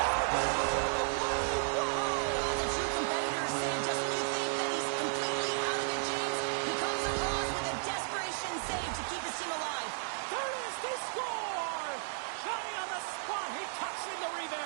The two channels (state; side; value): silent; left; digital silence